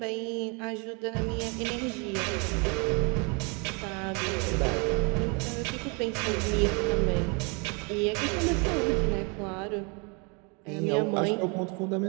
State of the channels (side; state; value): left; quieter; 32.4 dB